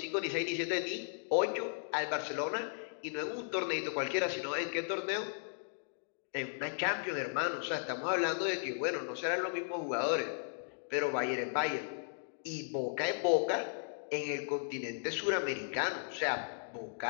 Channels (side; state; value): right; silent; digital silence